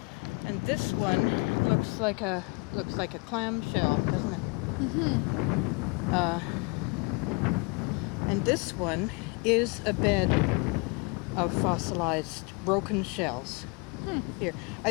And this one looks like a clamshell, doesn't it? And this one is a bed of fossilized broken shells. Here,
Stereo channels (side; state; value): right; quieter; 29.9 dB